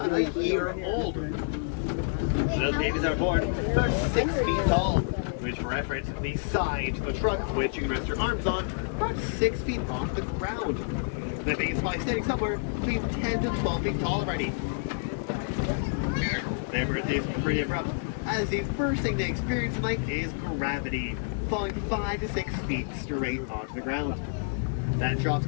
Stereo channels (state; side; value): silent; right; digital silence